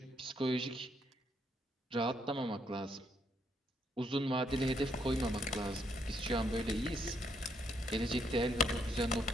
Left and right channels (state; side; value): normal; both; correlation 0.74